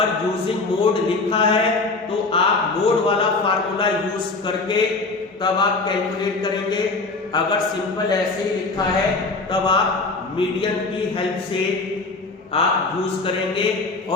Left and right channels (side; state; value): right; quieter; 3.6 dB